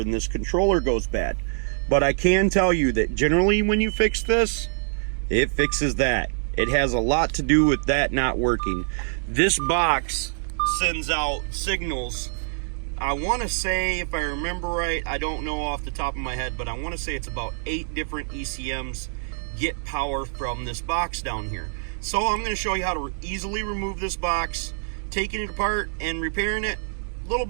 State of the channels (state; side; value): silent; left; digital silence